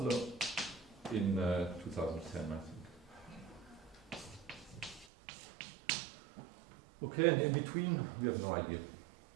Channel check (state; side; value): drops out; left; at 5.1 s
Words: in 2010, I think. Okay, and in between, we have no idea.